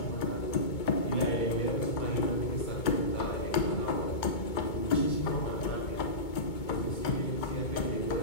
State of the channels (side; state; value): right; late; 2.2 ms